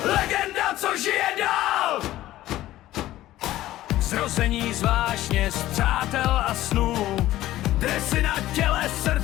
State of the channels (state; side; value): quieter; right; 15.0 dB